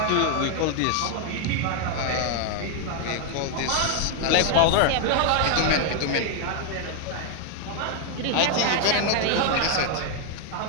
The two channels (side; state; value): both; different; correlation 0.01